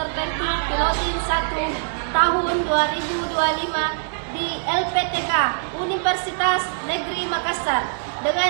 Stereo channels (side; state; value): left; silent; digital silence